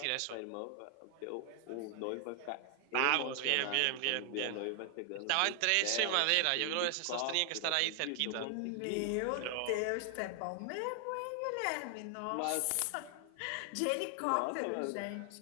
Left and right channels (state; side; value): different; both; correlation 0.00